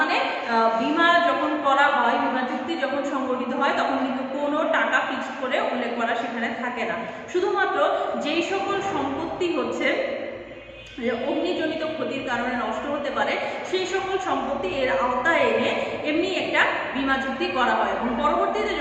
বীমা যখন করা হয়, বীমা চুক্তি যখন সংগঠিত হয়, তখন কিন্তু কোনো টাকা ফিক্সড করে উল্লেখ করা সেখানে থাকে না। শুধুমাত্র যেই সকল সম্পত্তি হচ্ছে অগ্নিজনিত ক্ষতির কারণে নষ্ট হতে পারে সেই সকল সম্পত্তি এর আওতায় এনে এমনি একটা বীমা চুক্তি করা হয়, এবং পরবর্তীতে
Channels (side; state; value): both; identical; correlation 1.00